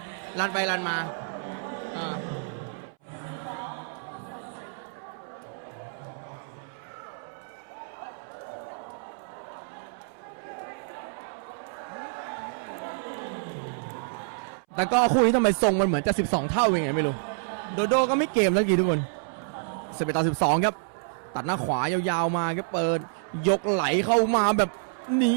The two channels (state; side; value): silent; left; 59 dB below the other